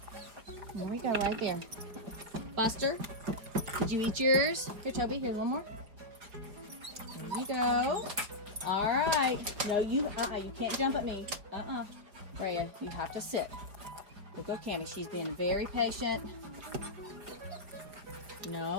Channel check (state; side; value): late; left; 4.8 ms